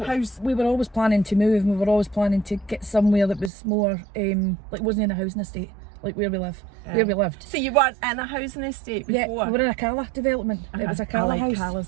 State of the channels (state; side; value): drops out; left; at 3.5 s